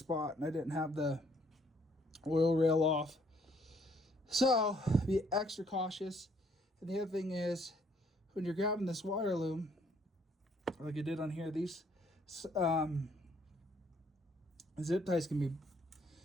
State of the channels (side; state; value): both; normal; correlation 0.66